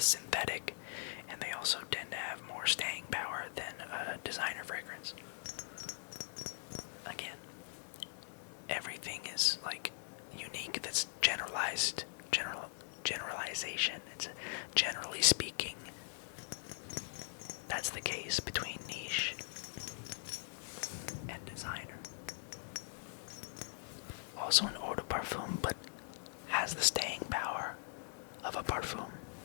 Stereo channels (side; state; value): right; silent; digital silence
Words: synthetic, and they also tend to have more staying power than a designer fragrance. Again, everything is like unique. That's generalization. It's generally speaking. That's the case between niche and designer. Also an eau de parfum, but has the staying power of a parfum.